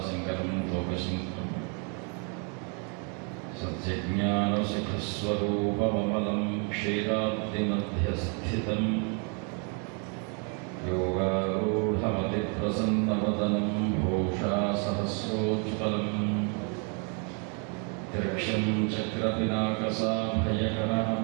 లోకశంకరం. సత్యజ్ఞానసుఖస్వరూపమమలం క్షీరాబ్ధిమధ్యస్థితం యోగారూఢమతిప్రసన్నవదనం భూషా సహస్రోజ్వలం త్రిక్షం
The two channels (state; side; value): quieter; left; 37.8 dB